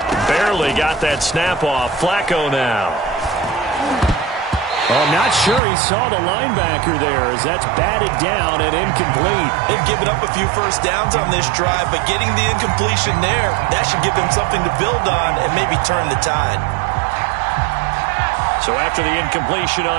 Barely got that snap off. Flacco now. Well, I'm not sure he saw the linebacker there, as that's batted down and incomplete. They've given up a few first downs on this drive, but getting the incompletion there, that should give them something to build on and maybe turn the tide. So after the incompletion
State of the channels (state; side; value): drops out; left; at 5.6 s